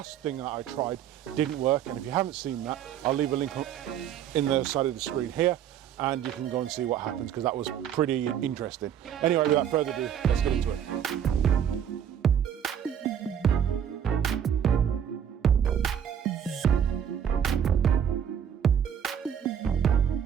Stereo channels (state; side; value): quieter; left; 9.0 dB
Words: thing that I tried didn't work, and if you haven't seen that, I'll leave a link in the side of the screen here, and you can go and see what happens, because that was pretty interesting. Anyway, without further ado, let's get into it.